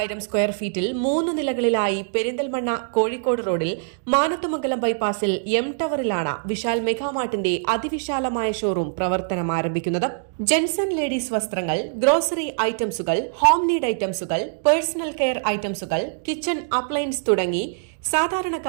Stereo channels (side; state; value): left; silent; digital silence